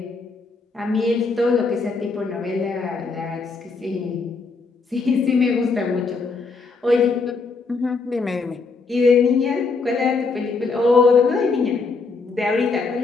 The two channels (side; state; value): right; quieter; 4.3 dB